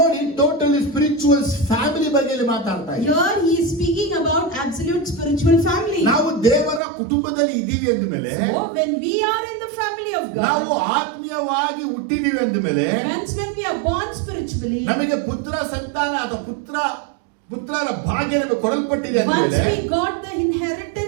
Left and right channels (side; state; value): left; drops out; at 6.8 s